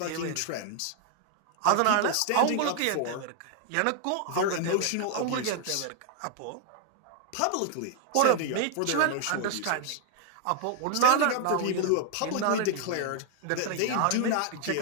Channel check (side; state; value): both; different; correlation 0.00